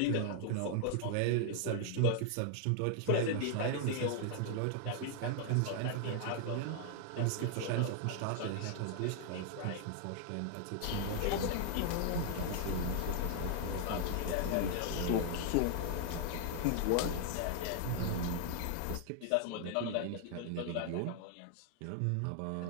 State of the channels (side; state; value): both; different; correlation 0.00